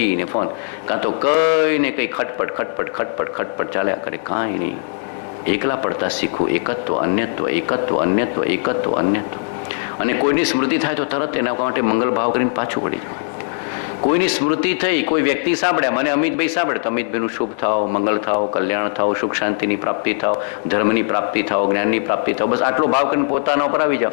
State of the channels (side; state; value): right; silent; digital silence